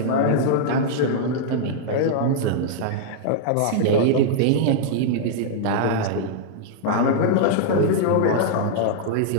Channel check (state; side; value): different; both; correlation -0.01